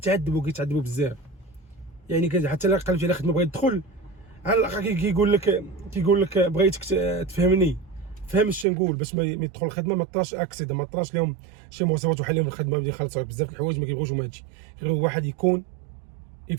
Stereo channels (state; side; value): drops out; left; at 8.7 s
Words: بزاف. يعني حتى الا قلبتي على خدمه بغيت تدخل على الاقل كيقول لك بغيتك تفهمني، فهم اش نقول باش ما يدخل الخدمه ما طراش اكسيد، ما طراش لهم شي مواصفات وحالهم الخدمه بدي يخلصوا بزاف الحوايج ما كيبغوش هما هادشي. غير واحد يكون